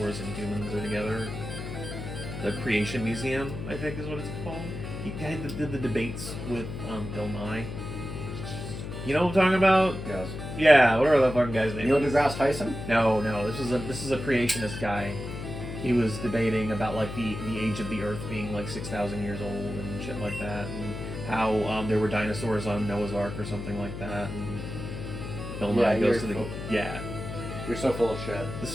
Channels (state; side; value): noise; left; hum, 7 dB below the sound